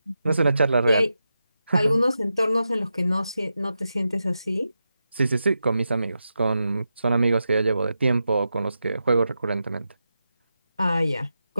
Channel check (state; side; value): inverted; both; correlation -0.89